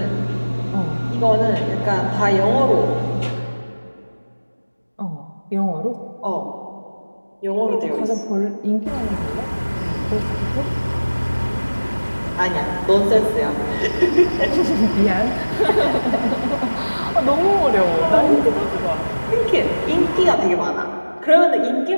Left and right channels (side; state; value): both; inverted; correlation -1.00